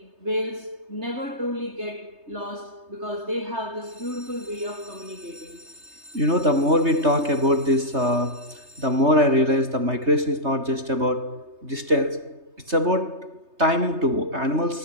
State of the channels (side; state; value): left; late; 3.3 ms